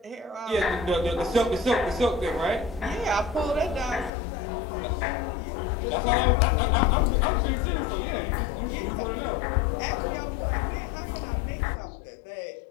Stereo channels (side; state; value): right; drops out; at 4.1 s